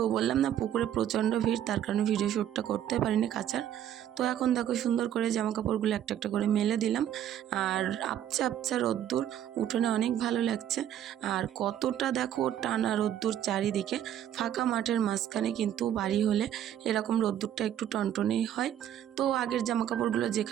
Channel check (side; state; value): left; quieter; 10.7 dB